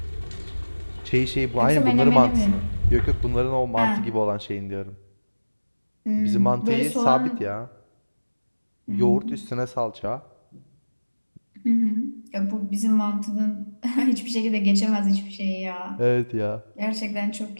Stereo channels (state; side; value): inverted; both; correlation -1.00